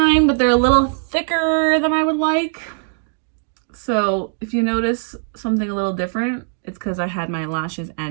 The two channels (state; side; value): silent; left; digital silence